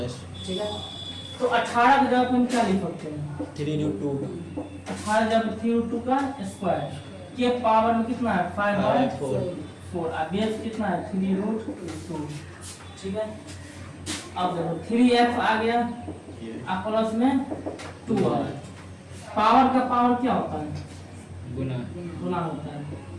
ठीक है। तो 18 की जगह हम क्या लिख सकते हैं? 3√2 18 जब 3√2 का स्क्वायर के पावर में कितना है? 5/4। और बेस कितना है? 3√2, ठीक है। अब देखो 3x आ गया, अब प्लस में 2y। पावर का पावर क्या होता है? गुना होता है।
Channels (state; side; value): identical; both; correlation 1.00